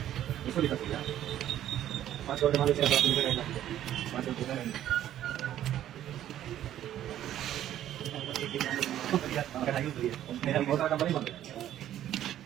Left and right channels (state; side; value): quieter; left; 11.9 dB